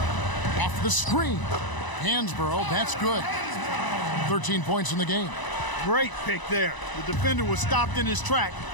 Off the screen. Hansborough, that's good. 13 points in the game. Great pick there. The defender was stopped in his track,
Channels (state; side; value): late; right; 1.0 ms